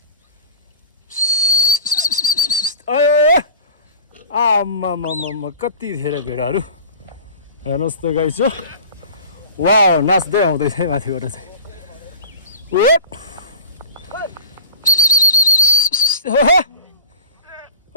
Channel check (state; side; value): inverted; both; correlation -0.38